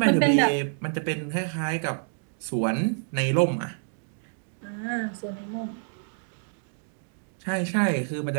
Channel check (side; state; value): left; silent; digital silence